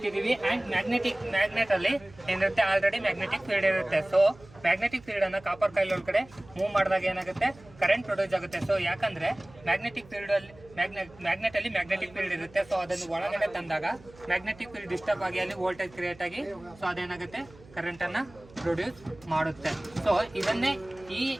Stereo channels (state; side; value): noise; right; hum, 23 dB below the sound